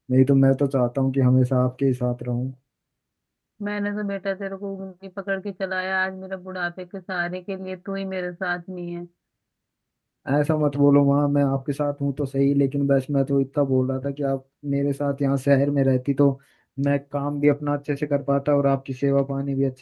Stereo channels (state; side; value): identical; both; correlation 1.00